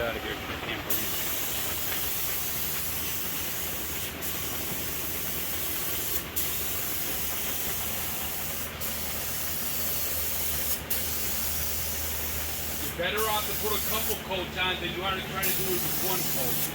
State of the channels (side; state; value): both; identical; correlation 1.00